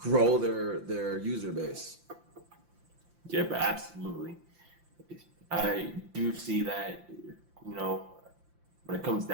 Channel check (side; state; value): left; late; 5.8 ms